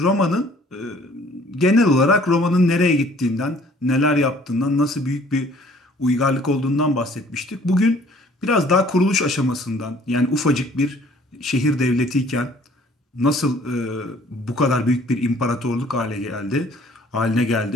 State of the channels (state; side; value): normal; both; correlation 0.56